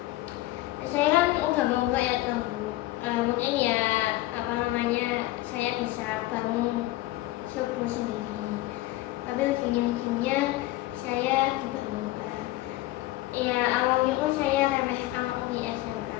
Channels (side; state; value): right; quieter; 17.3 dB